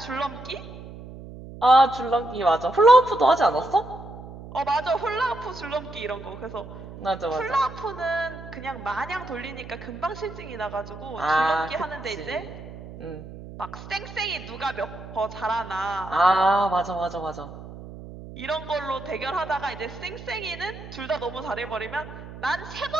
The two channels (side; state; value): right; noise; hum, 14 dB below the sound